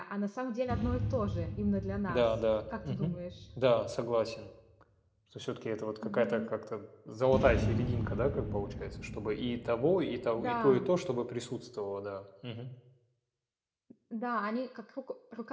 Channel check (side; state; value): both; identical; correlation 1.00